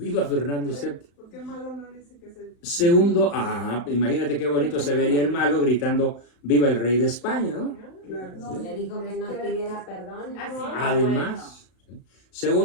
Fernando VII! Segundo, imagínate qué bonito se vería el malo gritando ¡viva el rey de España! ¿No? Le dijo que no pidiera perdón. Además,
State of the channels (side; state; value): right; late; 35 ms